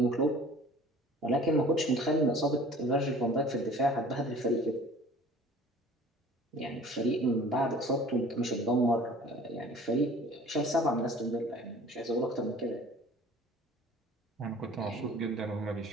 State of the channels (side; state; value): both; normal; correlation 0.47